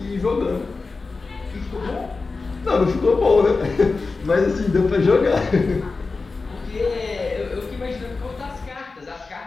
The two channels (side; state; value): right; quieter; 4.0 dB